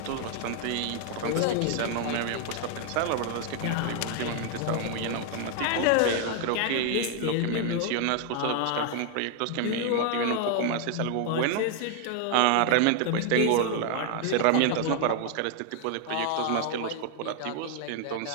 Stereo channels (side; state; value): both; different; correlation 0.00